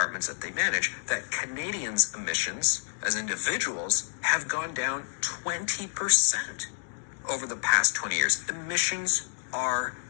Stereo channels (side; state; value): right; silent; digital silence